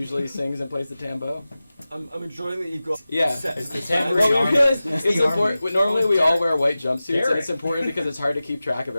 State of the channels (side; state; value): both; inverted; correlation -0.96